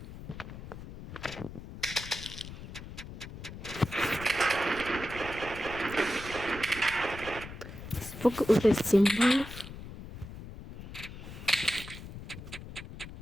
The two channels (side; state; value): left; noise; rumble, 12 dB below the sound